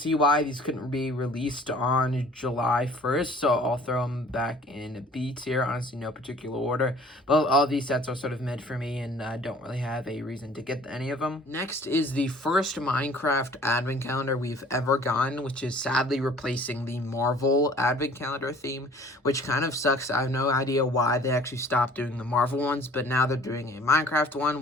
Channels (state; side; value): normal; both; correlation 0.51